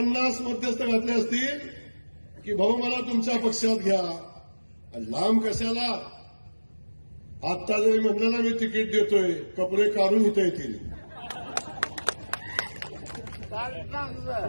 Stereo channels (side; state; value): both; inverted; correlation -1.00